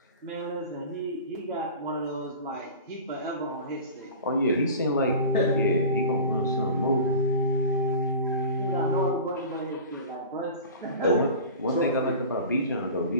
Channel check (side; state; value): both; inverted; correlation -0.36